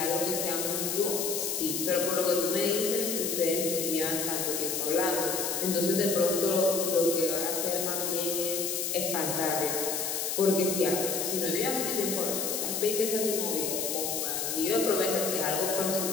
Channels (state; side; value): noise; left; hiss, 1 dB below the sound